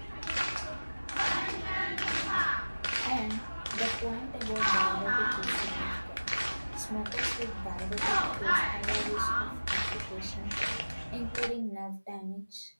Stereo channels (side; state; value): both; inverted; correlation -1.00